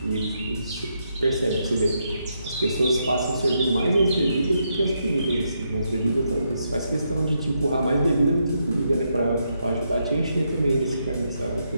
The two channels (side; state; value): both; inverted; correlation -0.80